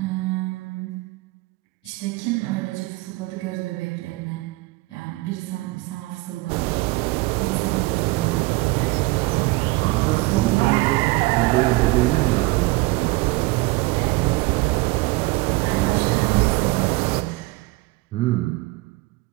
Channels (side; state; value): left; quieter; 22.1 dB